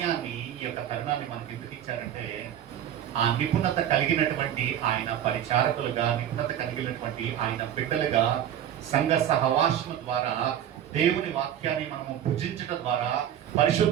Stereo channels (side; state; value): left; quieter; 10.5 dB